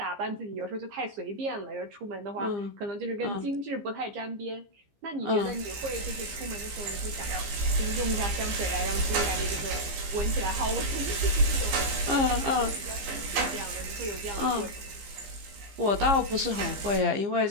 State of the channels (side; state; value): left; late; 15 ms